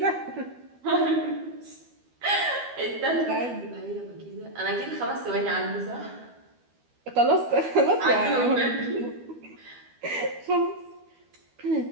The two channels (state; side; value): late; left; 12 ms